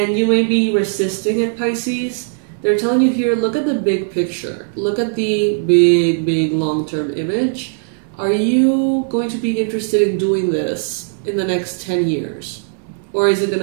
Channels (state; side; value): silent; left; 59 dB below the other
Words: you may be resisting it, Pisces. They're telling you here, look at the big picture. Look at the big long-term image. Are you going to be interested in doing this in the next 10 years? Or is it going